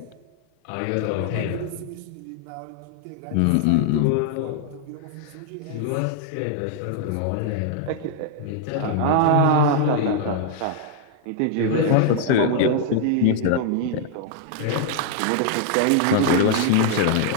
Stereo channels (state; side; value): different; both; correlation -0.01